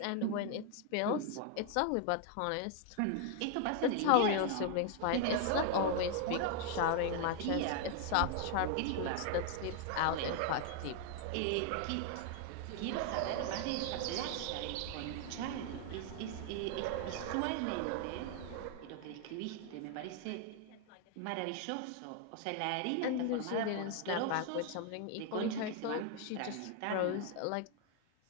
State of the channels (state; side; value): different; both; correlation 0.00